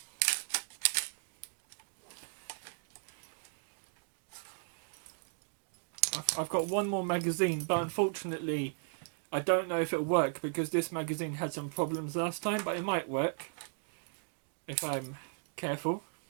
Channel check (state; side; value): silent; left; digital silence